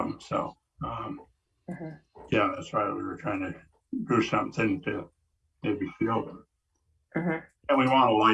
So, that's why we were trying to do something to maybe shield them. And we want a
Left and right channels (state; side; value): identical; both; correlation 1.00